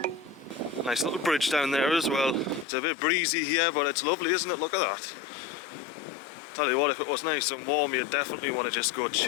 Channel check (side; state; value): right; drops out; at 2.7 s